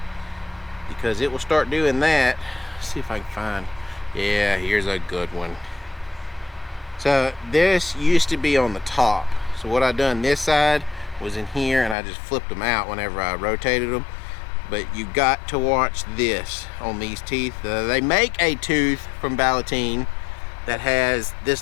because it will start doing that. Let's see if I can find, yeah, here's a good one. So this used to be on the top. So what I done this side was in here, and I just flipped them out whenever I rotated them. But you got to watch this on these teeth. They make a tooth from Ballotine that has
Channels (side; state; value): right; drops out; at 12.0 s